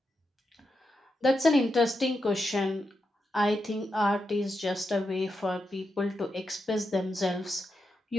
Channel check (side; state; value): both; normal; correlation 0.86